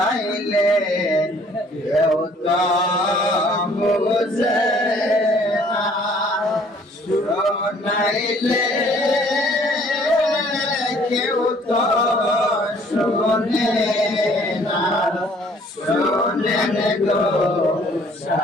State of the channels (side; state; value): both; normal; correlation 0.58